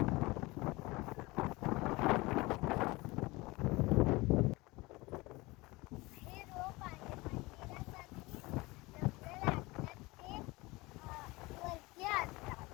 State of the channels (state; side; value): quieter; right; 22.5 dB